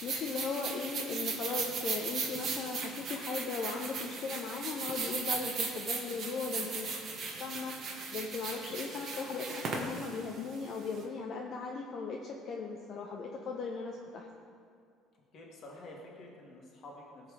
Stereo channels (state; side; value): normal; both; correlation 0.57